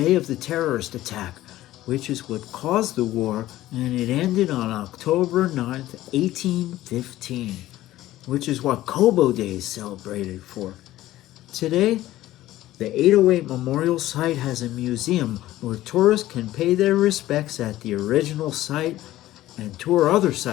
of the terrorist attack, which is what caused the war, and it ended on October 9th, 1815, which is what Cobo Day is celebrated for. Today, the 808 Memorial Site has a museum where tourists can pay their respects at the original site and tour other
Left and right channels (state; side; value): quieter; right; 15.2 dB